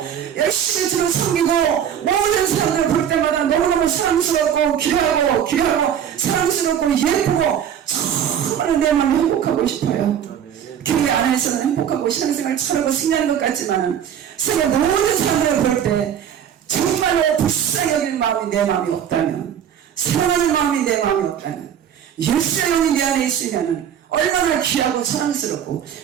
열심히 주를 섬기고 모든 사람들 볼 때마다 너무너무 사랑스럽고 귀하고 사랑스럽고 예쁘고 정말 내 마음이 행복하고 싶어요. 교회 안에서는 행복하고 신앙생활 잘하고 승리하는 것 같지만 세계 모든 사람들을 볼 때 정말로 불쌍히 여기는 마음이 내 마음이 없다면 사랑하는 마음이 내 마음이 없다면 예수의 영이 내 안에 있으면 얼마나 귀하고 사랑스럽고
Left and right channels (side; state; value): left; quieter; 9.1 dB